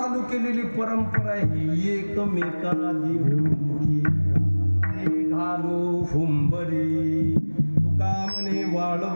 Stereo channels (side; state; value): both; inverted; correlation -1.00